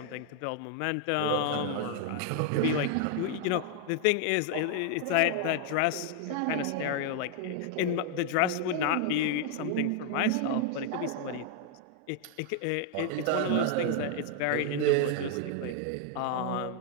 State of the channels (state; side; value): different; both; correlation 0.00